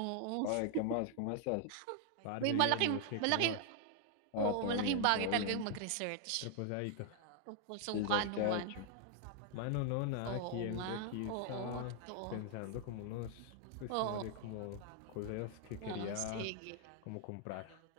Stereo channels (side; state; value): both; different; correlation 0.00